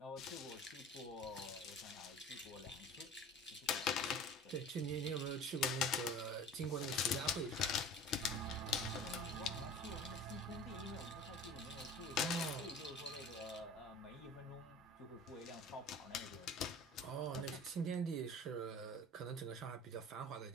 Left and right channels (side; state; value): both; normal; correlation 0.41